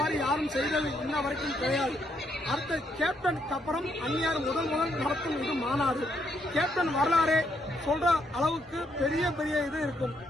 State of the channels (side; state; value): both; normal; correlation 0.75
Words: யாரும் செய்தது இன்ன வரைக்கும் கிடையாது. அடுத்த கேப்டனுக்கு அப்புறம் அந்நியார் முதல் நடத்தும் இது மாநாடு. கேப்டன் வரலாறே சொல்ற அளவுக்கு பெரிய இது இருக்கும்.